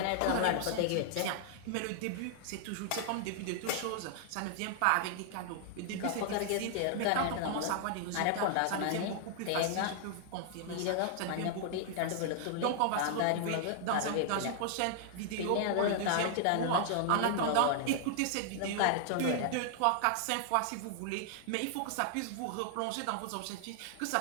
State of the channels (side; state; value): both; different; correlation 0.00